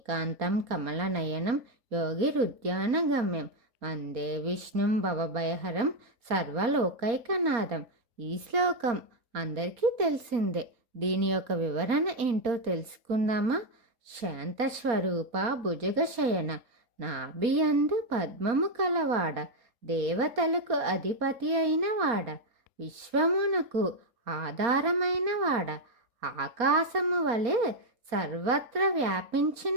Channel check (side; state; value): left; late; 4.3 ms